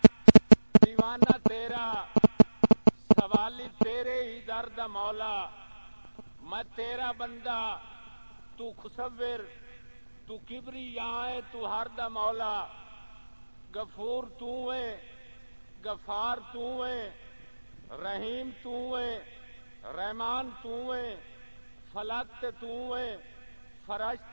دیوانہ تیرا سوالی تیرے ہی درد مولا میں تیرا بندہ تو خصور تو کبری یہاں تو ہر دا مولا غفور تو ہے غفار تو ہے رحیم تو ہے رحمان تو ہے فلک تو ہے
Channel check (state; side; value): inverted; both; correlation -1.00